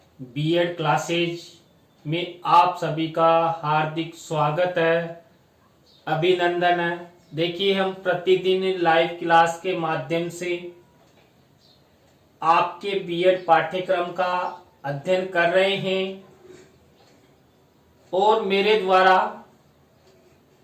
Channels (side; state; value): both; identical; correlation 1.00